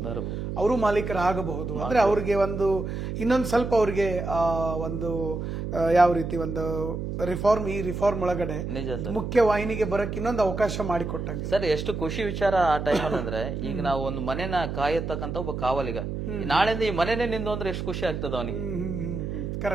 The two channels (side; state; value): right; noise; hum, 4 dB below the sound